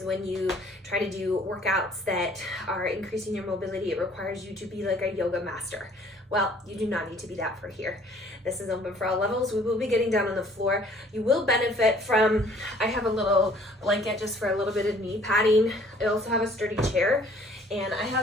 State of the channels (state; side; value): normal; both; correlation 0.57